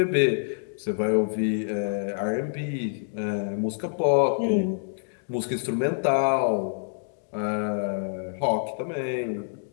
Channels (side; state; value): right; silent; digital silence